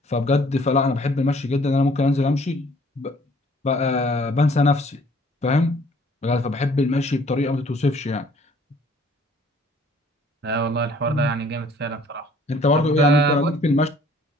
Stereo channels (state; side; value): normal; both; correlation 0.57